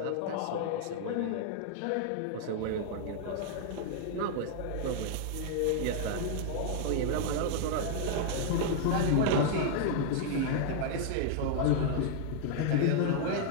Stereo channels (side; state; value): both; different; correlation -0.01